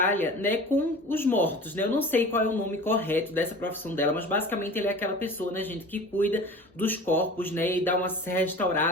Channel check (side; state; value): both; normal; correlation 0.39